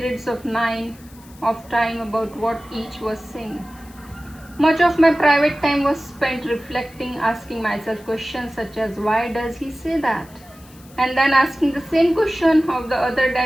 of time about what each was saying. Much of my private time was spent reflecting, asking myself questions such as, why does he say that? And then asking the same question of the other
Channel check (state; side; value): noise; left; hiss, 25 dB below the sound